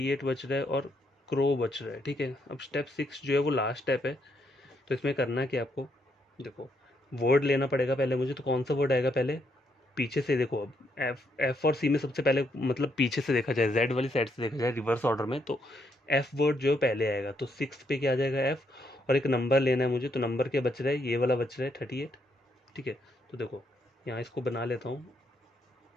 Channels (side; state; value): both; normal; correlation 0.75